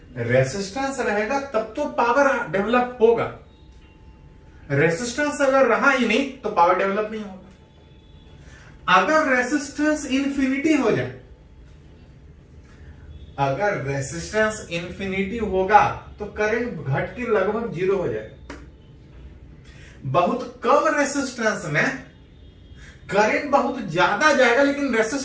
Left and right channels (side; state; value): both; identical; correlation 1.00